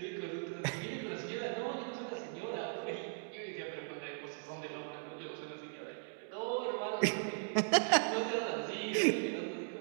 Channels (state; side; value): silent; left; digital silence